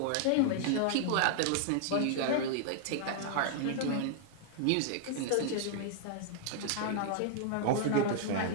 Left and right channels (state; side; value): different; both; correlation 0.00